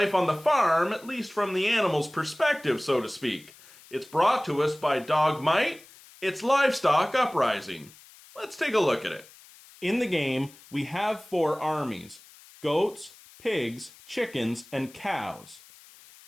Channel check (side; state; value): left; noise; hiss, 23 dB below the sound